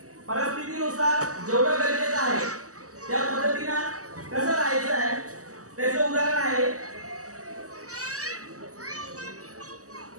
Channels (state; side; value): late; left; 0.66 ms